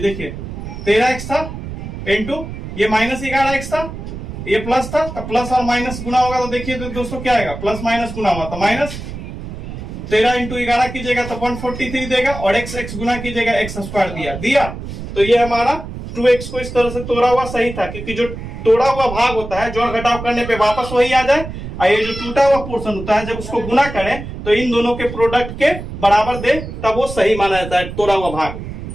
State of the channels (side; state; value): right; noise; rumble, 9 dB below the sound